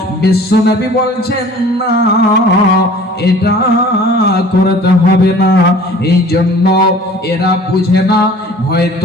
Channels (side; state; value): both; normal; correlation 0.48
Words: বিশ্বনবী বলছেন, না, এটা করতে হবে না। এই জন্য এরা বুঝে না,